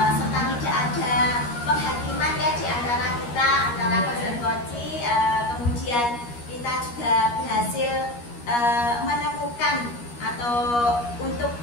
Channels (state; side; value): late; right; 13 ms